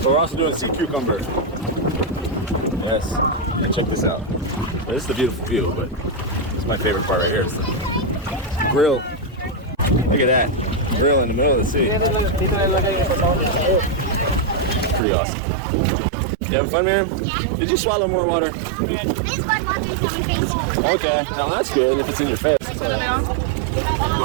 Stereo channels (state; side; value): drops out; left; at 15.0 s